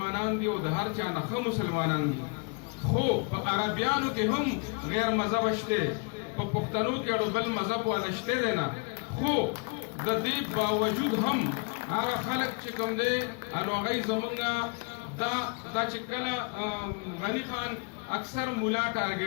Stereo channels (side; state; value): right; quieter; 34.5 dB